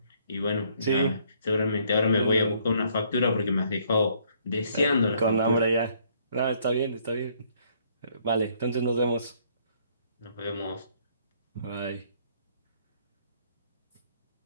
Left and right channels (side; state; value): both; inverted; correlation -0.65